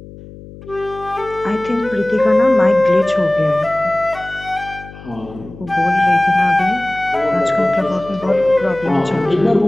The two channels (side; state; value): left; noise; hum, 17 dB below the sound